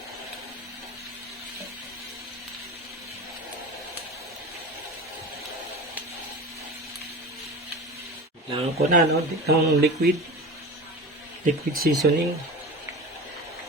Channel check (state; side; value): normal; both; correlation 0.32